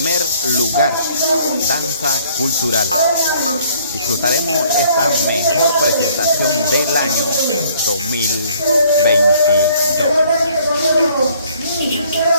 lugar. Danza cultural. Disfrutaremos esta mejor presentación del año 2022.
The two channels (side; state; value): both; inverted; correlation -0.60